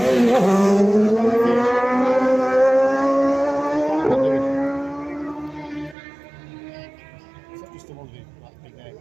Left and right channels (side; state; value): left; drops out; at 6.0 s